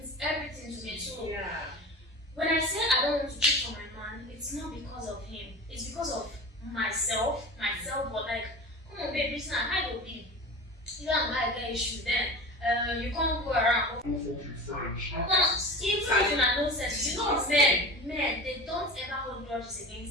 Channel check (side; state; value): both; normal; correlation 0.33